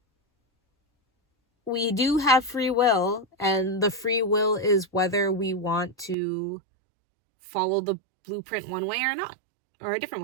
we do have free will, and the free will is whether we want to follow the blueprint one way or not, or a different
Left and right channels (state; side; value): drops out; left; at 6.2 s